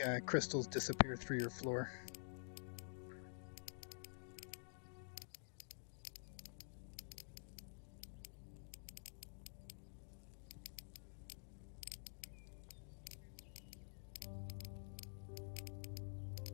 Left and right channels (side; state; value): right; silent; digital silence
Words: crystals disappear through your floor.